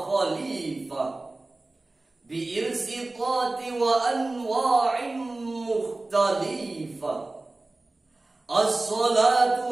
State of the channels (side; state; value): left; quieter; 3.0 dB